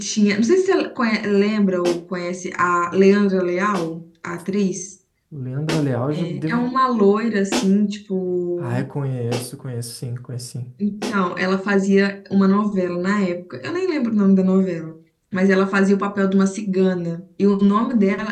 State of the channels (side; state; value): both; identical; correlation 1.00